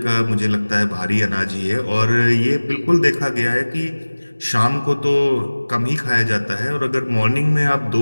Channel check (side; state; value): both; inverted; correlation -1.00